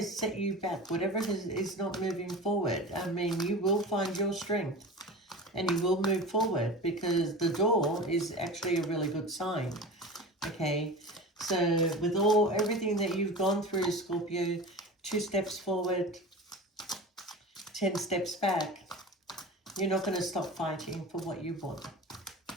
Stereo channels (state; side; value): normal; both; correlation 0.33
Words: set you back, whatever is not moving forward, I mean, you will find your strength and you will move forward because the door is actually a really good sign. Okay, so with everything that you've gone through, Scorpio, 2 steps forward, 10 steps back, you're not going to stop fighting for what you want.